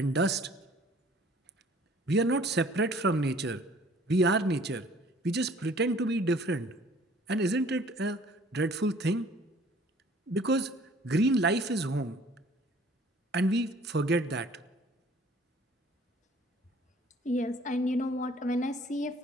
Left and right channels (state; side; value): normal; both; correlation 0.54